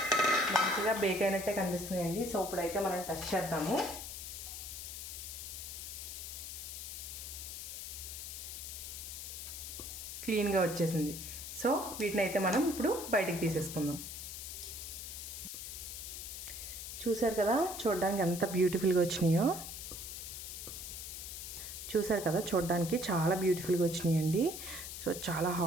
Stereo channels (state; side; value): noise; left; hiss, 8 dB below the sound